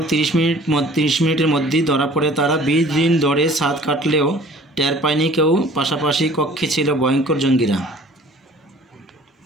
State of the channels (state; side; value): normal; both; correlation 0.49